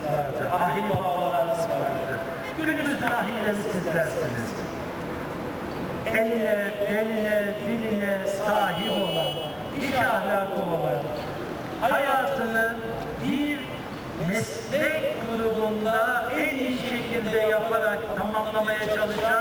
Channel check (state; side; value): identical; both; correlation 1.00